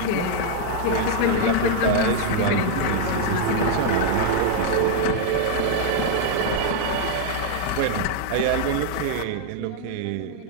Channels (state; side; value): different; both; correlation 0.00